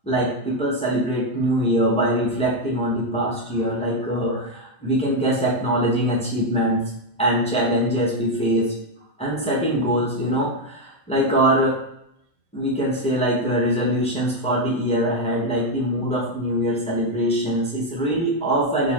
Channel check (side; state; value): both; normal; correlation 0.02